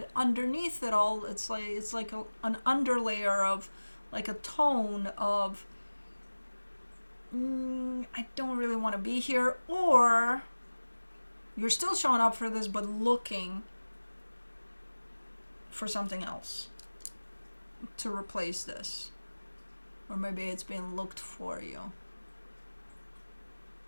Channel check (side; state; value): both; inverted; correlation -1.00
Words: Underneath it all, it's like an underlayer of, like a tone of, I don't really want to be here, or you're still showing up for this but looking for something else to replace this, or maybe it's being looked for you.